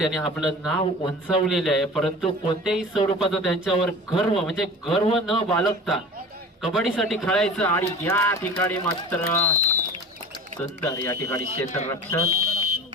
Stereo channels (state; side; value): normal; both; correlation 0.38